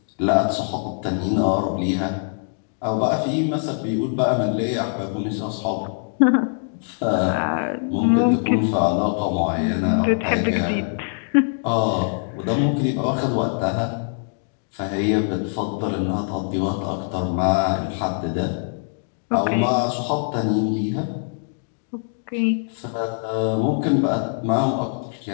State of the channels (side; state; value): right; silent; digital silence